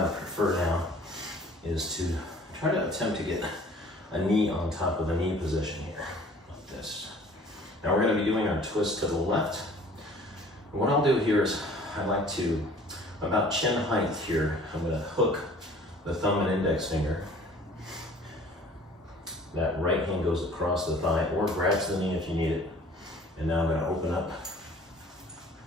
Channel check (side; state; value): both; normal; correlation 0.50